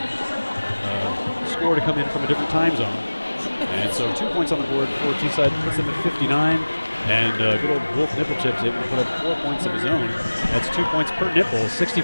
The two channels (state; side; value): inverted; both; correlation -1.00